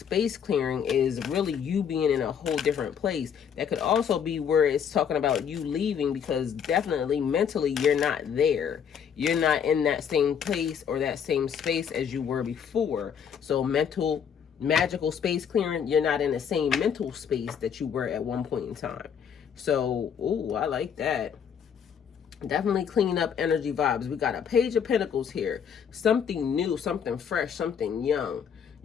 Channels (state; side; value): quieter; right; 7.7 dB